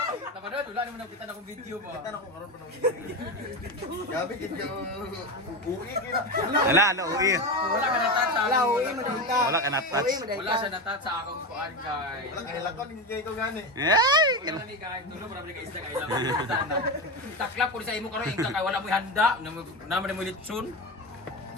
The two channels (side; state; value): both; normal; correlation 0.19